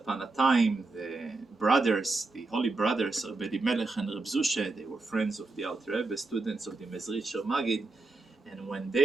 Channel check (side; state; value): left; quieter; 3.4 dB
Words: a time the brothers, the holy brothers, Rabbi Melech and Reb Zushe, they were friends of the Alter Rebbe, students of the Mezritcher Maggid, and when